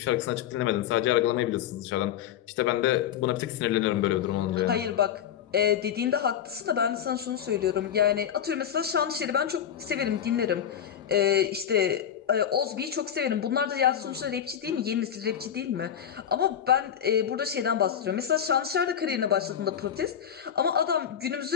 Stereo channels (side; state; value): right; quieter; 9.3 dB